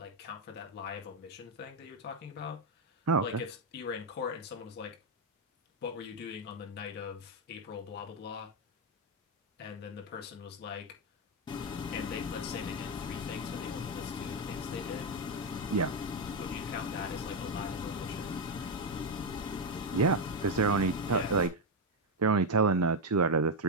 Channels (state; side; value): normal; both; correlation 0.04